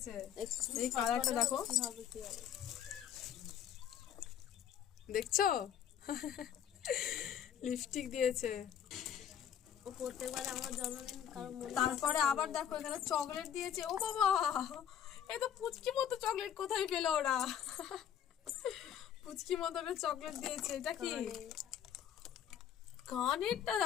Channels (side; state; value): right; quieter; 9.4 dB